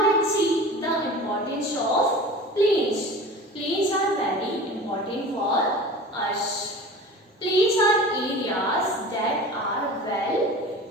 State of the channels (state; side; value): normal; both; correlation 0.37